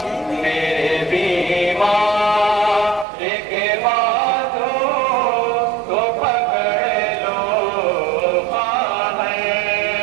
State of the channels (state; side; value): drops out; left; at 3.1 s